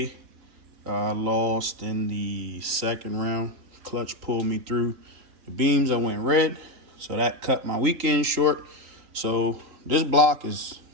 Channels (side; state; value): left; late; 3.9 ms